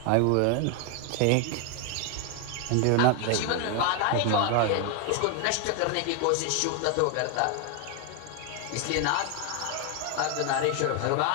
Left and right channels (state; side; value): different; both; correlation 0.01